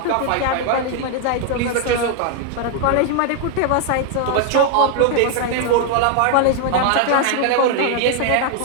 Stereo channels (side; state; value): both; different; correlation 0.00